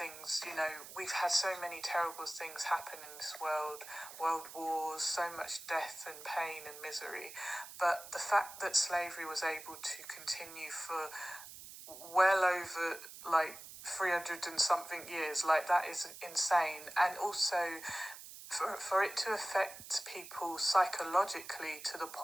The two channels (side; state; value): right; noise; hiss, 14 dB below the sound